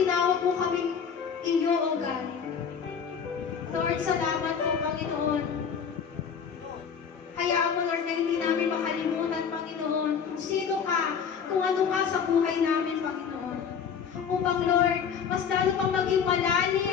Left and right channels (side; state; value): right; quieter; 7.0 dB